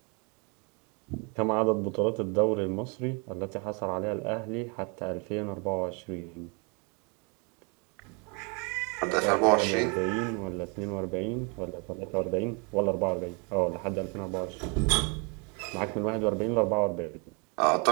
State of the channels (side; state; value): left; quieter; 33.6 dB